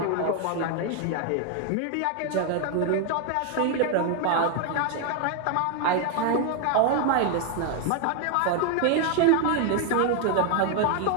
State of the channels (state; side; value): different; both; correlation 0.01